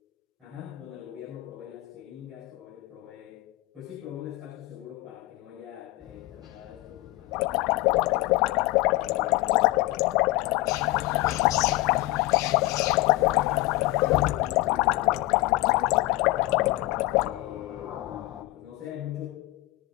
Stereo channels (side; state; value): right; quieter; 19.4 dB